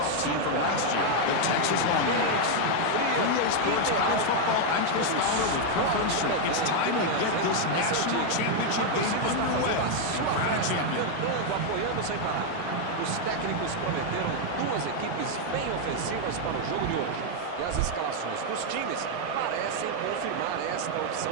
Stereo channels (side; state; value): both; different; correlation 0.01